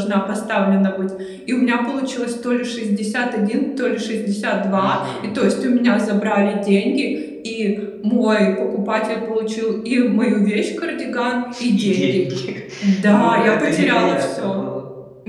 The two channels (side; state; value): both; identical; correlation 1.00